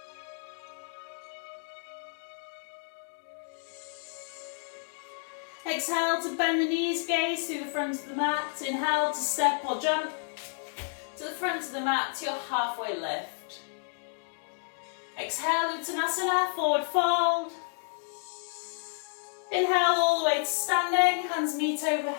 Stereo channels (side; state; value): right; silent; 57 dB below the other